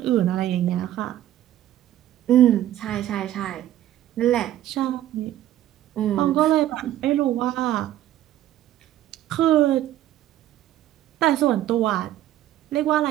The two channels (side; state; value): left; quieter; 13.0 dB